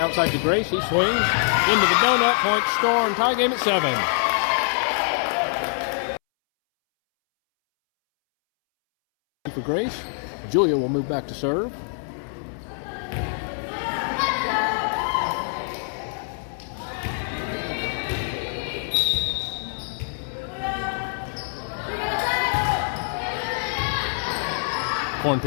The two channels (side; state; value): right; silent; 62 dB below the other